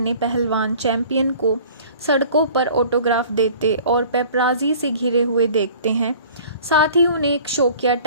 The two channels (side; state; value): both; inverted; correlation -0.47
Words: पहलवान चैंपियन को सड़कों पर ऑटोग्राफ देते और पेपराजी से घिरे हुए देखते हैं। साथ ही उन्हें एक शौकिया